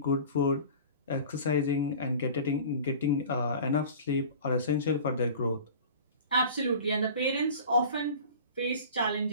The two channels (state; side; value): inverted; both; correlation -0.40